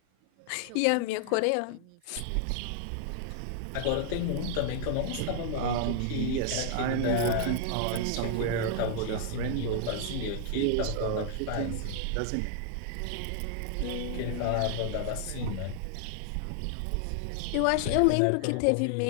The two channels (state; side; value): different; both; correlation 0.00